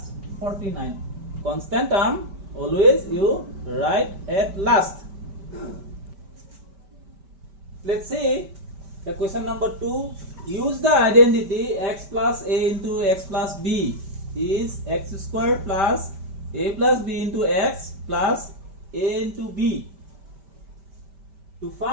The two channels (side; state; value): left; late; 5.1 ms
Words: 49. Constant term always you write at last. Let's see the question number 2. Use the identity x plus a into x plus b is x square plus a plus b into x plus a into b to